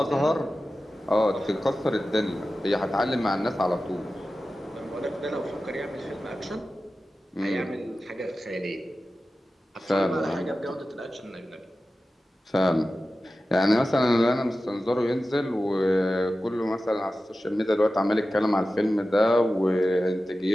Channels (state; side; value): normal; both; correlation 0.94